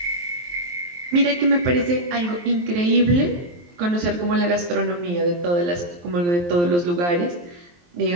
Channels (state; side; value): late; left; 23 ms